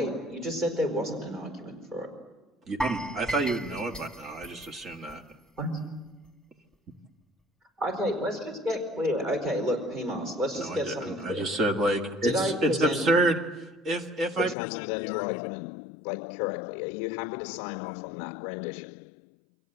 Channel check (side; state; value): right; drops out; at 14.6 s